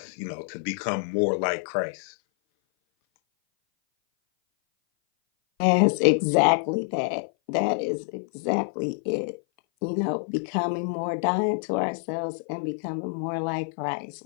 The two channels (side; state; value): right; silent; 57 dB below the other